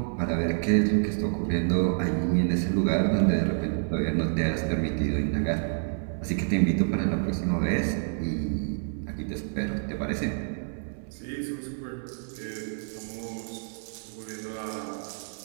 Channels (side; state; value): left; silent; 59 dB below the other